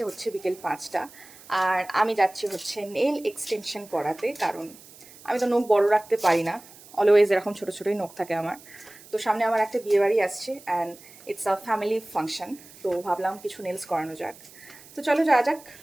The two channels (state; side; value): noise; right; hiss, 21 dB below the sound